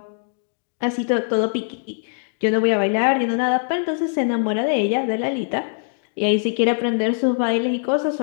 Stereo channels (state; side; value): silent; right; digital silence